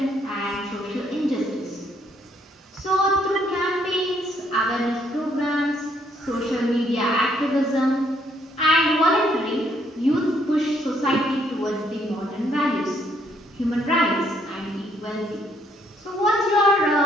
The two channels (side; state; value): both; normal; correlation 0.70